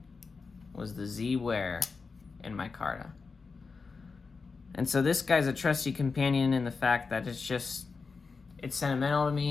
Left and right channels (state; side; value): quieter; right; 4.6 dB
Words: was the Z-Wear in micarta. And so this guy's a trusty companion in the fact that it's sentimental to